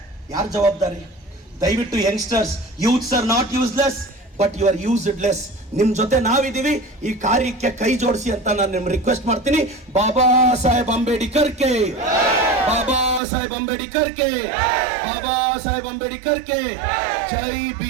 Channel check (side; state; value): left; drops out; at 13.2 s